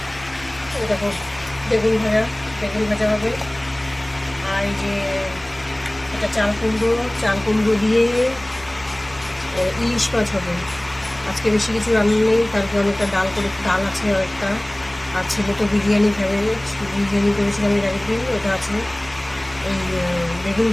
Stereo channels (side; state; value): left; noise; hum, 21 dB below the sound